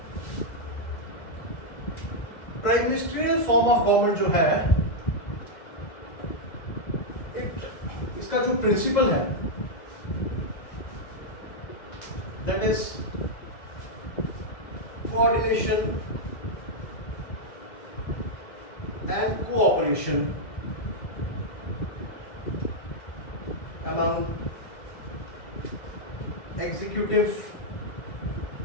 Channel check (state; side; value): late; right; 2.0 ms